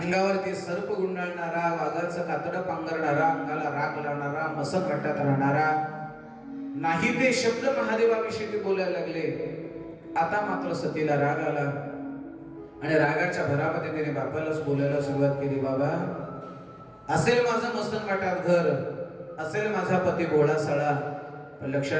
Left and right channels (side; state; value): both; identical; correlation 1.00